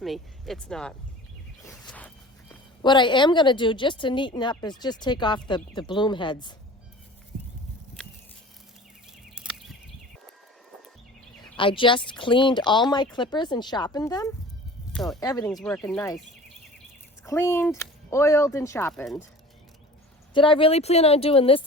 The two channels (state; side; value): normal; both; correlation 0.41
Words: me, it's not. What I am going to do just to neaten up is just take off the bloom heads. I just cleaned all my clippers and sharpened them, so everything's working nice. It's cleaned, oiled, and sharpened. Did I really plan on doing this